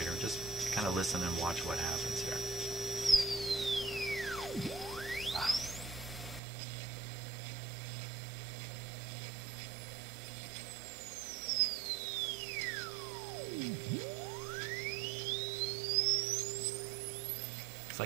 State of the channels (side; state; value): left; drops out; at 6.4 s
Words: Just kind of listen and watch what happens here. Wow. It's